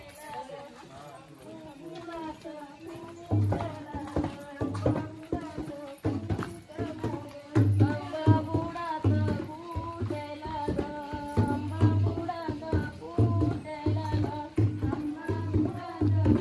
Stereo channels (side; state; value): both; identical; correlation 1.00